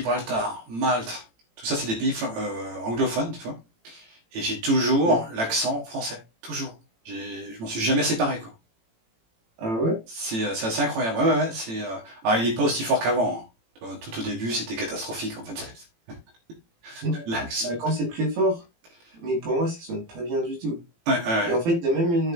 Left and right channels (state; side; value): late; left; 18 ms